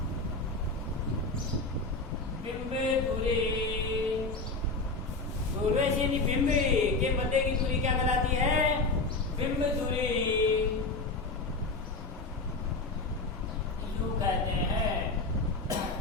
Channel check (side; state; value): right; quieter; 3.4 dB